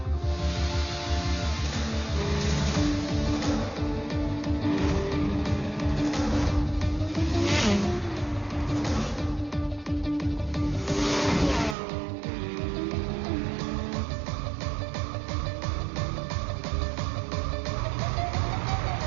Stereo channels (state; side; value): drops out; left; at 11.8 s